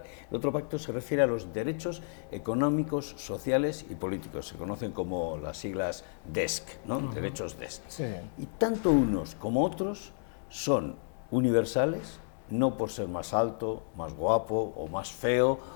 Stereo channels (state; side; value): silent; right; digital silence